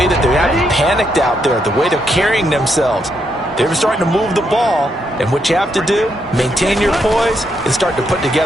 that they haven't panicked out there, the way they're carrying themselves. They're starting to move the ball, and what you have to do, maintain your poise and start to put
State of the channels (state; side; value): normal; both; correlation 0.78